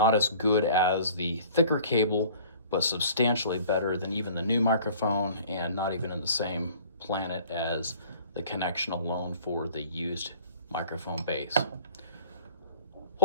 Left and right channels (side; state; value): both; inverted; correlation -0.47